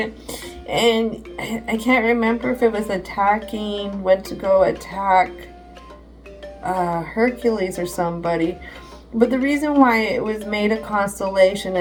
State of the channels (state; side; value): identical; both; correlation 1.00